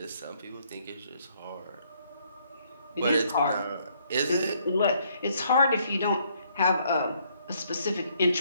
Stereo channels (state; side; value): inverted; both; correlation -0.68